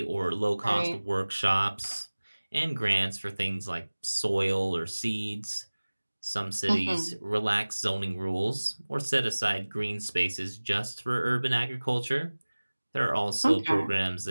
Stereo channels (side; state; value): both; inverted; correlation -1.00